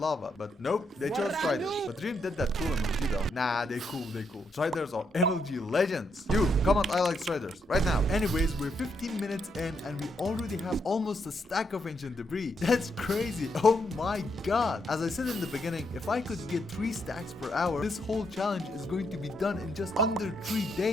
but nope, they chose striders. But Dream did that cool MLG though. Nah, they cool. Striders are MLG legends. You, comment I like striders right now. Anyways, we're 15 minutes in and we already have almost a stack of ancient debris. That's crazy. Oh my god. As I said in the beginning, if I could get 3 stacks per hour, this whole challenge is going to be done in just under 3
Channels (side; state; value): both; normal; correlation 0.78